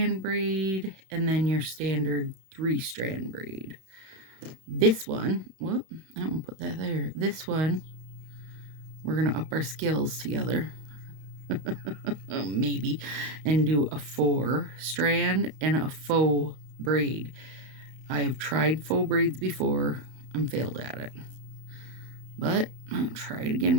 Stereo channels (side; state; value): left; late; 31 ms